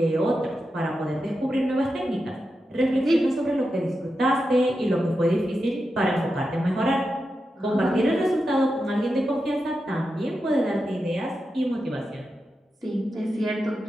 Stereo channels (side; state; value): both; normal; correlation 0.89